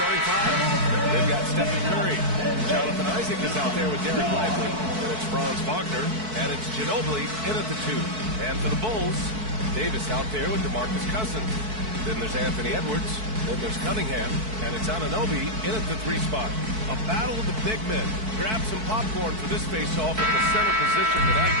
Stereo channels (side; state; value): left; late; 4.6 ms